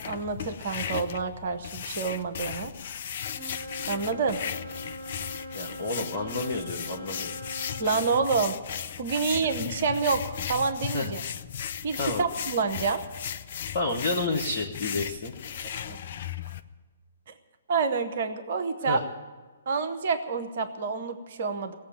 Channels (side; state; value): both; inverted; correlation -0.54